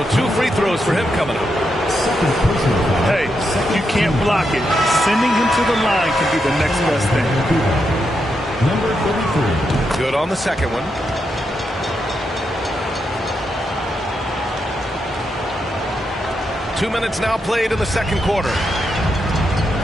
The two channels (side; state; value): both; normal; correlation 0.83